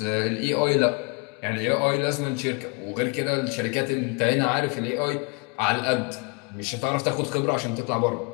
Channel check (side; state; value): right; quieter; 33.0 dB